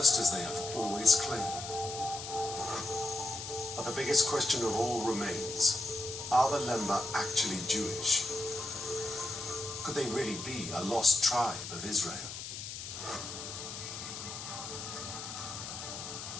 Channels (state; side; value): noise; left; hiss, 8 dB below the sound